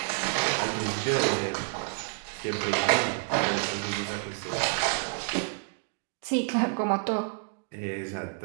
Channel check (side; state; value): left; silent; 56 dB below the other